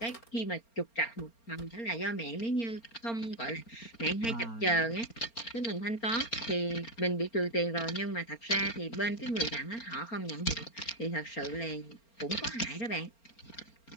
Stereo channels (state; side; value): late; right; 4.3 ms